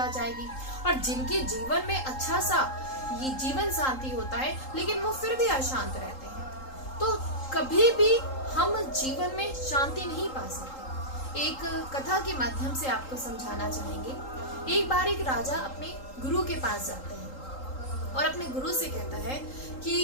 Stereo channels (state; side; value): late; right; 3.8 ms